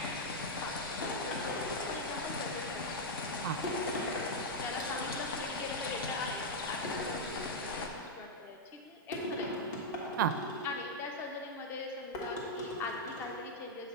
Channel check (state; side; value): normal; both; correlation -0.01